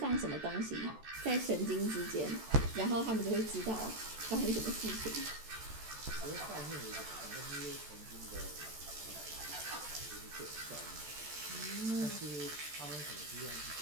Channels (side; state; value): left; late; 14 ms